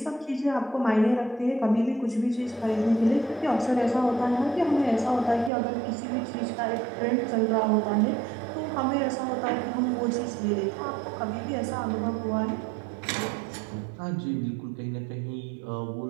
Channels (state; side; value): drops out; left; at 5.5 s